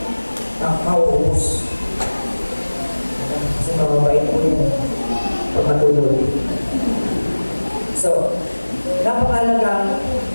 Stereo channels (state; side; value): inverted; both; correlation -1.00